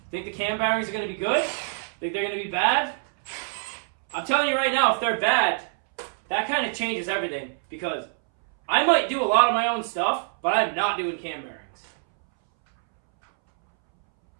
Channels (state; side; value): silent; left; 62 dB below the other